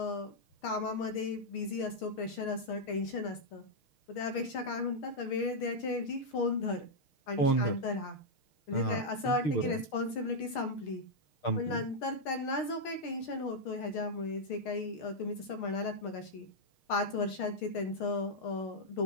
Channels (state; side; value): late; right; 6.5 ms